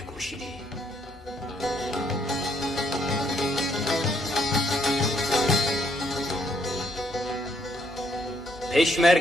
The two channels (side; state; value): both; normal; correlation 0.71